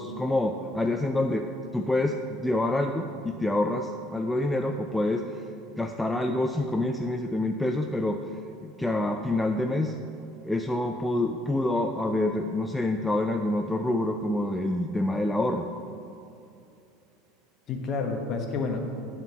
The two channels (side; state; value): both; normal; correlation 0.75